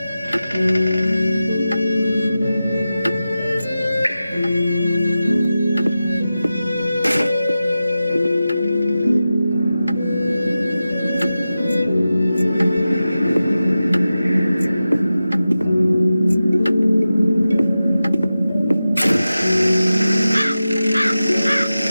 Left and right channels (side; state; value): both; inverted; correlation -0.93